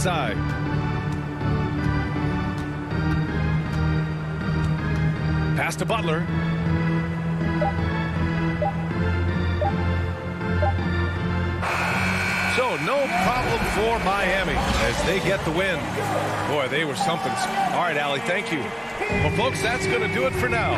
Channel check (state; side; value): identical; both; correlation 1.00